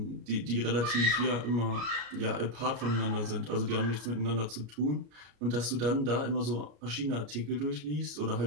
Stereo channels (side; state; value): left; late; 34 ms